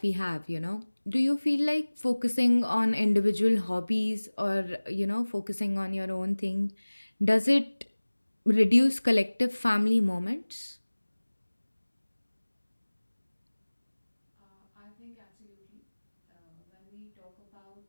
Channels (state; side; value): inverted; both; correlation -1.00